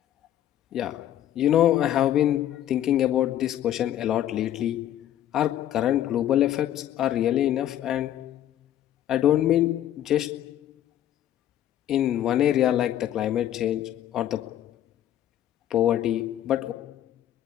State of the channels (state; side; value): quieter; right; 11.8 dB